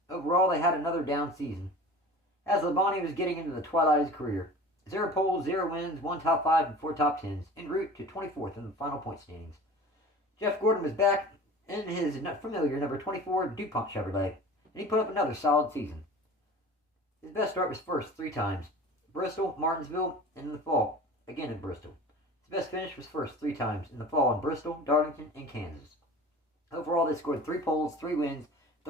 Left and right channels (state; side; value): normal; both; correlation 0.40